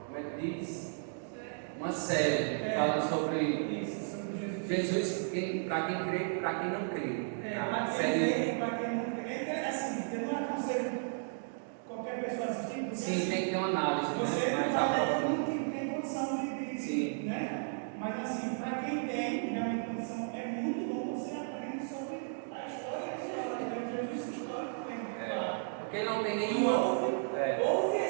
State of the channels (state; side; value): silent; left; digital silence